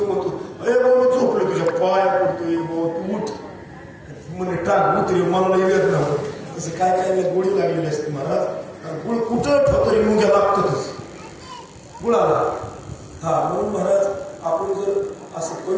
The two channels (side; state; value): both; identical; correlation 1.00